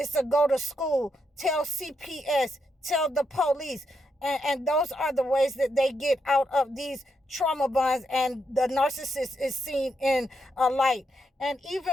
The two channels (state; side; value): normal; both; correlation 0.81